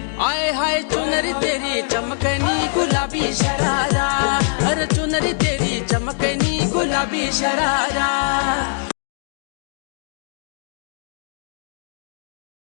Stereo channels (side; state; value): right; silent; digital silence